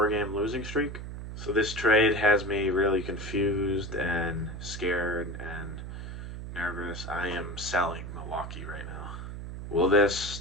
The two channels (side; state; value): right; noise; hum, 8 dB below the sound